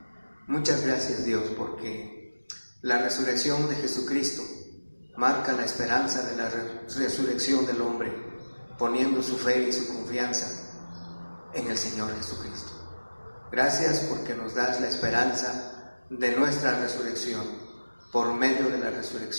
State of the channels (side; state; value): both; inverted; correlation -1.00